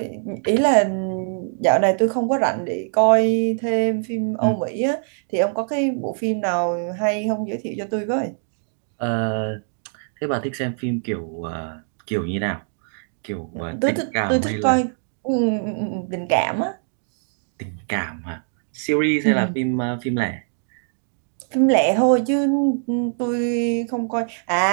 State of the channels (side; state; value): left; silent; 62 dB below the other